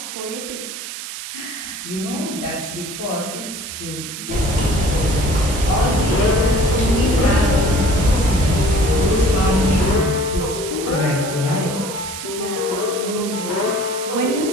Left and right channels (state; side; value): noise; right; hiss, 9 dB below the sound